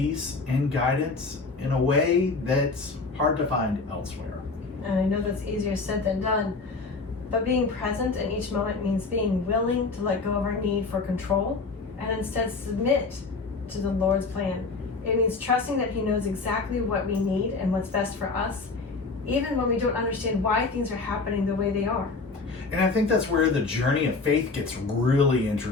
and guidance in a way that's hard to find elsewhere. And I know that's easier said than done, but being present in each moment means being willing to let go of our need for control and instead submit to the Lord's plan. It means trusting that He knows exactly what we need and what's best for us, even when we don't understand why things are happening the way they are. And I think that's where the journey of faith gets really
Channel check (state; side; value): quieter; right; 4.0 dB